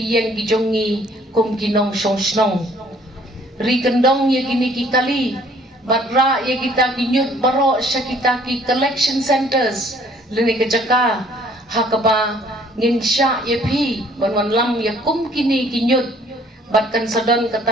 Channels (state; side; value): normal; both; correlation 0.59